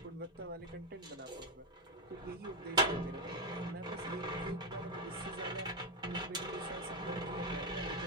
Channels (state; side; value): normal; both; correlation 0.07